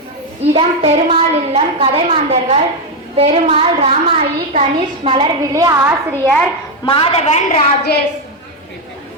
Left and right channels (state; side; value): normal; both; correlation 0.05